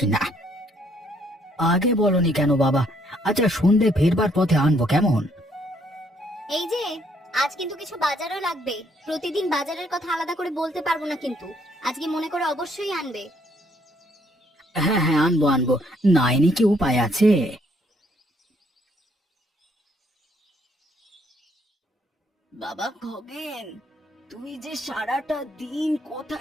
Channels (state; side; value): normal; both; correlation 0.68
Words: না। আগে বলনি কেন বাবা? আচ্ছা, সন্ধে ফেরবার পথে আনবো কেমন? এই যে, আজ কিন্তু কিছু বাজারও লাগবে। প্রতিদিন বাজারের কথা আলাদা করে বলতে পারবো না, কিন্তু আজকে মনে করে অবশ্যই আনবে। হ্যাঁ হ্যাঁ, আনবো আনবো, নাইনি কি উপায় আছে? বাবা খগেন, তুই যে সারাটা দিন